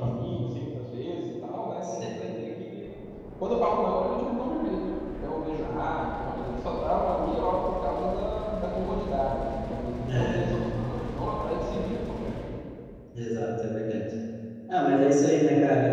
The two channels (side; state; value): both; identical; correlation 1.00